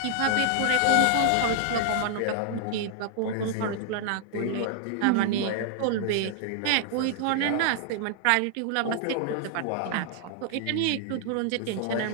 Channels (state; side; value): different; both; correlation -0.01